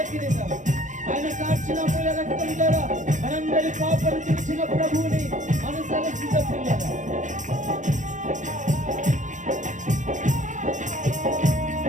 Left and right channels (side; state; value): left; late; 0.36 ms